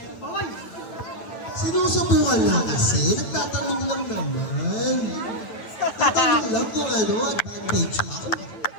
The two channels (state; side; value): late; right; 9.0 ms